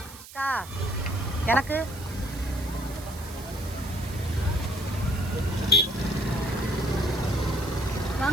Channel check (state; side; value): noise; right; hiss, 16 dB below the sound